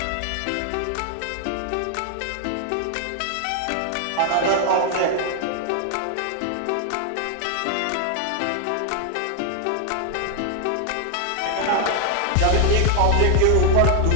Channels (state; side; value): different; both; correlation 0.00